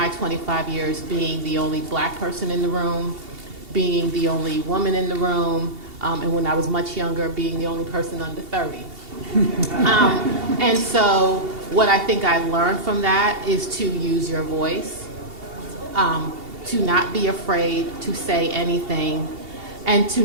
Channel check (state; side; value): late; left; 2.7 ms